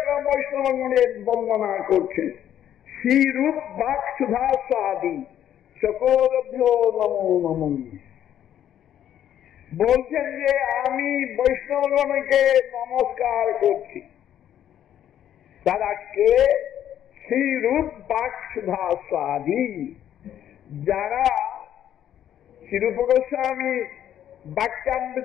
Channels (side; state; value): right; quieter; 10.6 dB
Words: বৈষ্ণবগণের বন্দনা করছেন। শ্রী রূপ বাক্সুধা স্বাধী চকোরভ্যো নমো নমো। বলছেন যে আমি বৈষ্ণবগণকে নমস্কার করছি। তারা কে? শ্রী রূপ বাক্সুধা স্বাধী, যারা শ্রীরূপ গোস্বামী